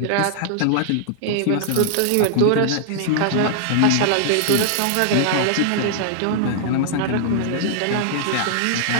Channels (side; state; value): both; different; correlation -0.01